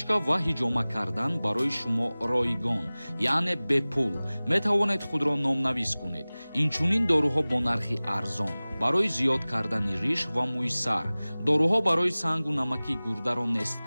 ва ҳиҷома кардан барои шумо ройгон, яъне бепул. Метавонед худро номнавис кунед. Инчунин доруҳо бо нархи арзон, барои зиёд кардани риш ва мӯи сар, доруҳо барои сангу намаки гурдаро нест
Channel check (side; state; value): both; inverted; correlation -0.99